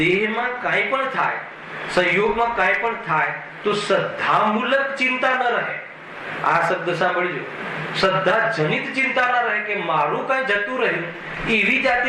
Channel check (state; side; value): identical; both; correlation 1.00